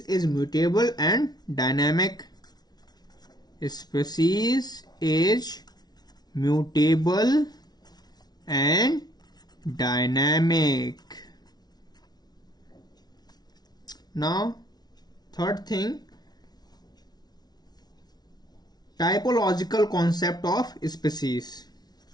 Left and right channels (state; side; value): late; right; 0.19 ms